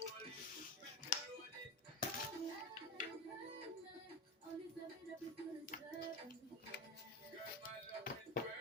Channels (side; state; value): both; normal; correlation 0.21